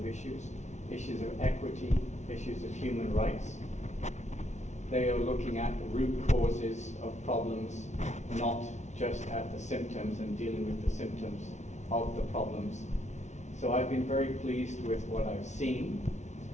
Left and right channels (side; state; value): right; late; 0.33 ms